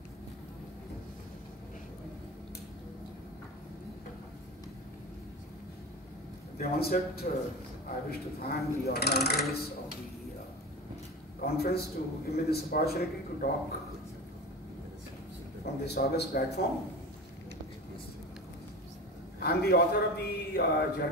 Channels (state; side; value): normal; both; correlation 0.29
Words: At the onset, I wish to thank the organizers of the conference to give me this opportunity to talk from this august platform. I am the author of the